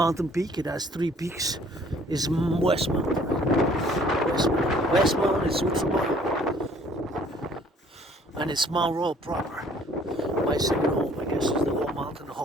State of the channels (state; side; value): normal; both; correlation 0.58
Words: peak, it has 3 peaks, is Westmount. Westmount is Switzerland, and it's Mount Royal proper. My second home, I guess, is the whole mountain, the